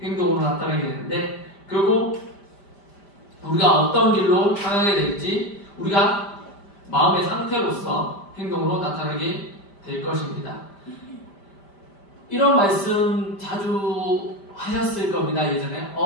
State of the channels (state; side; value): late; right; 5.0 ms